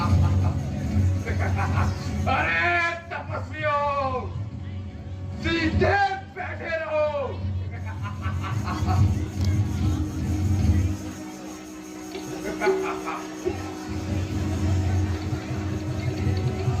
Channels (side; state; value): both; identical; correlation 1.00